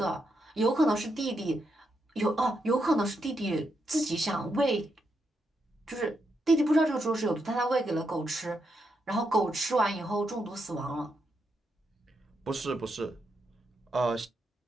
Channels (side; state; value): both; normal; correlation 0.82